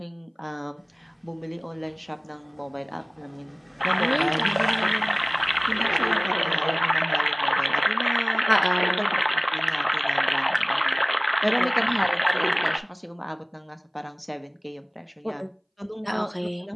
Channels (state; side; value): identical; both; correlation 1.00